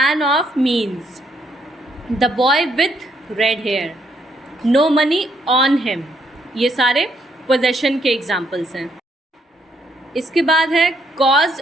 of means the boy with red hair, no money on him. ये सारे पोजेशन के एग्जाम्पल्स हैं। इसके बाद है कॉज,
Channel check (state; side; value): normal; both; correlation 0.72